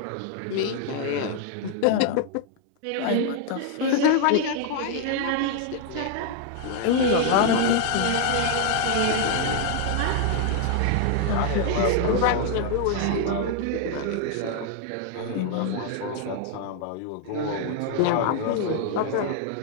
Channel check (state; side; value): different; both; correlation 0.00